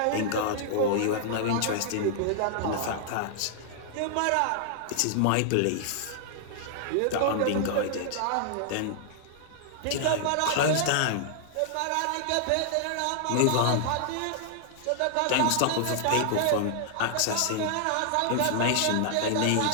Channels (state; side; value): different; both; correlation -0.01